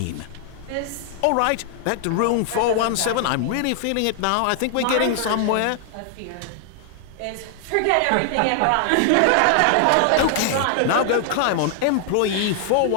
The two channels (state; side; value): different; both; correlation 0.00